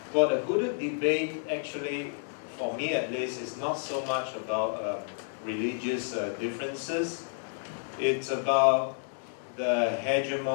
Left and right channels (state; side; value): silent; right; digital silence